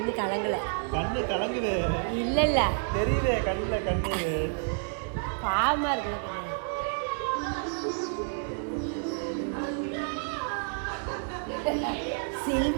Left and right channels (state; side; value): silent; left; 58 dB below the other